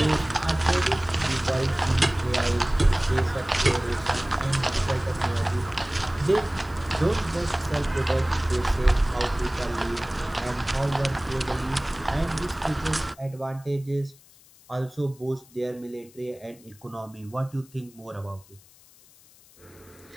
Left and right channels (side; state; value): left; noise; hiss, 26 dB below the sound